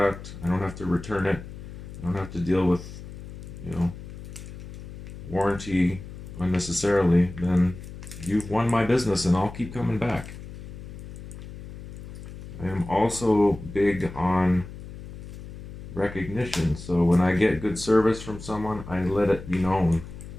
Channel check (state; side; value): noise; left; hum, 12 dB below the sound